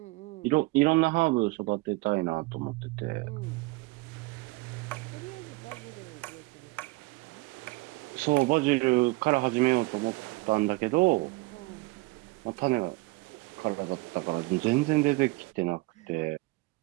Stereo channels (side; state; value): left; quieter; 23.3 dB